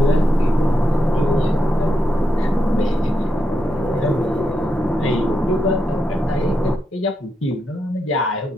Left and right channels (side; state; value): both; normal; correlation 0.84